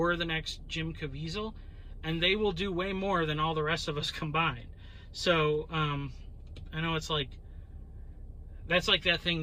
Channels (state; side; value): identical; both; correlation 1.00